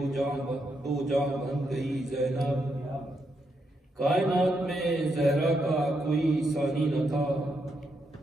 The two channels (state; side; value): normal; both; correlation 0.80